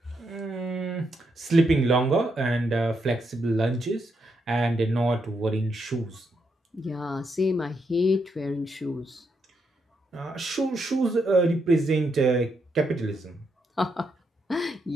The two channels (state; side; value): normal; both; correlation 0.80